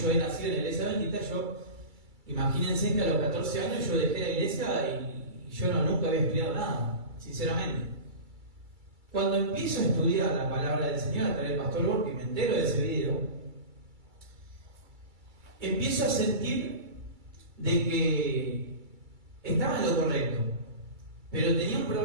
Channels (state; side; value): late; left; 2.3 ms